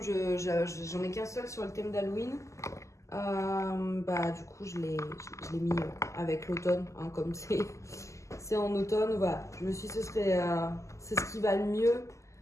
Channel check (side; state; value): right; late; 0.15 ms